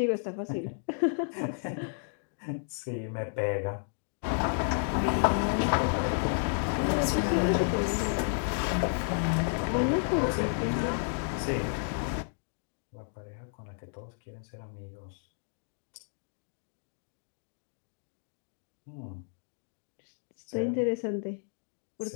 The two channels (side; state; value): right; silent; digital silence